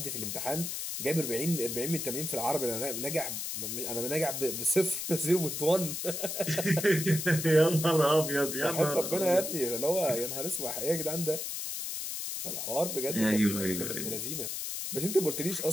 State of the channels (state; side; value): noise; left; hiss, 4 dB below the sound